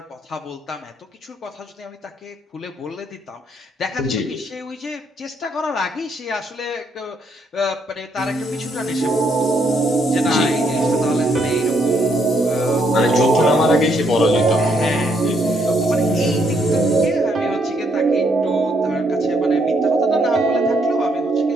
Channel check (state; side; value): normal; both; correlation 0.73